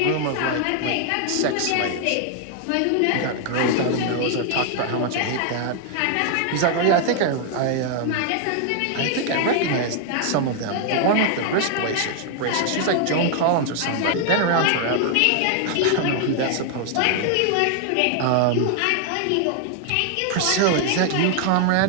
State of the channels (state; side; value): different; both; correlation 0.00